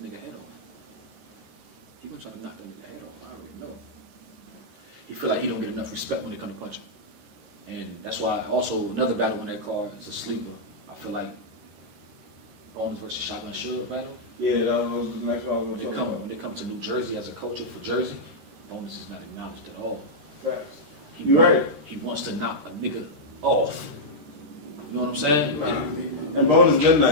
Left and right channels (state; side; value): late; left; 13 ms